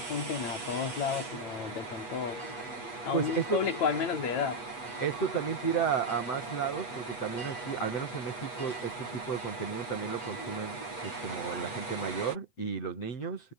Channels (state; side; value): late; right; 8.1 ms